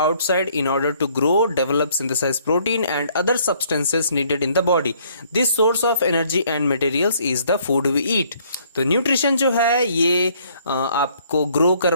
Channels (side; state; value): both; inverted; correlation -0.63